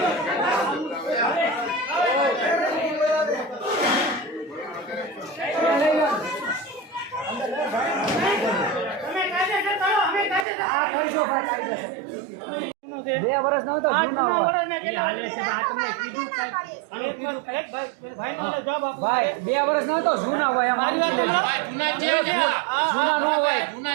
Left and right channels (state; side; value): drops out; left; at 10.5 s